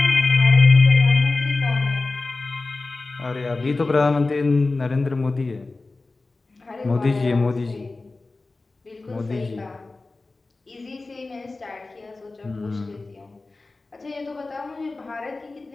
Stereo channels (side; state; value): right; quieter; 3.4 dB